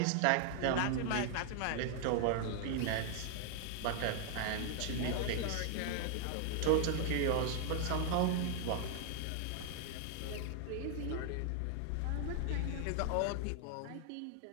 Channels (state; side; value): different; both; correlation 0.00